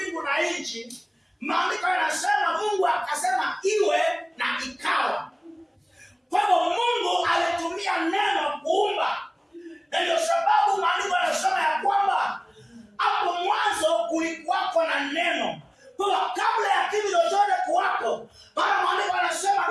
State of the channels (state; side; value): identical; both; correlation 1.00